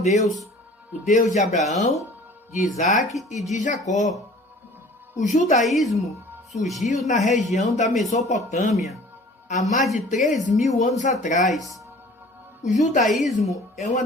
o Deus de Abraão, de Isaac e de Jacó. O judaísmo surgiu na região da Mesopotâmia há mais de 3.000 anos atrás. O judaísmo é uma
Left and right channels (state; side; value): normal; both; correlation 0.48